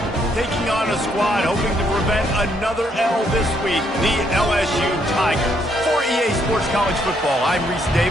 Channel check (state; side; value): normal; both; correlation 0.72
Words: taking on a squad hoping to prevent another L this week, the LSU Tigers. For EA Sports College Football, I'm Reese